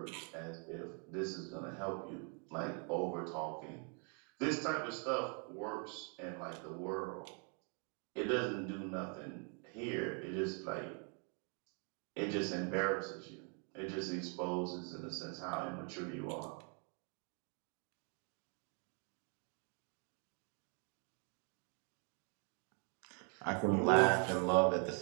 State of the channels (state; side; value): quieter; left; 39.5 dB